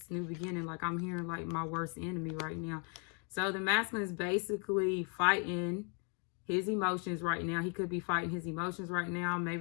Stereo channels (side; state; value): right; quieter; 36.2 dB